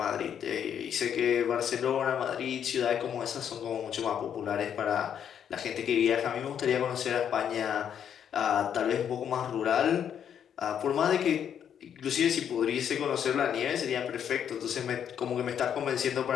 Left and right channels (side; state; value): right; quieter; 8.7 dB